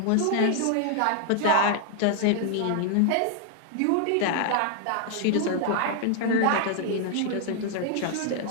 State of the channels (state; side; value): different; both; correlation 0.00